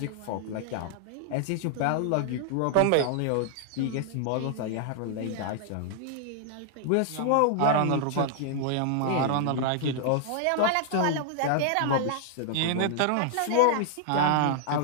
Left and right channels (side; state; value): both; different; correlation -0.01